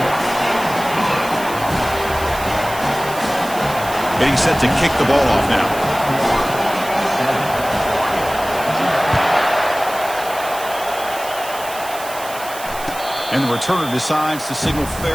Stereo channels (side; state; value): right; noise; hiss, 13 dB below the sound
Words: Getting set to kick the ball off now. And the returner decides to signal